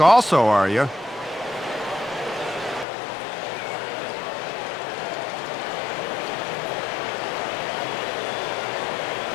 also, are you?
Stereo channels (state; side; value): drops out; right; at 2.9 s